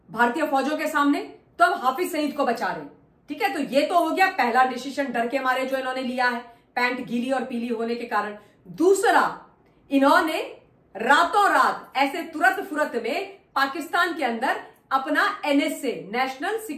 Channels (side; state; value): both; identical; correlation 1.00